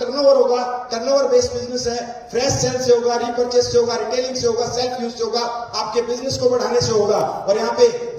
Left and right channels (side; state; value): both; identical; correlation 1.00